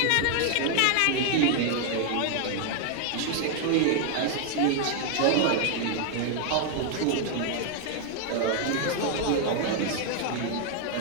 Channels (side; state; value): both; different; correlation 0.00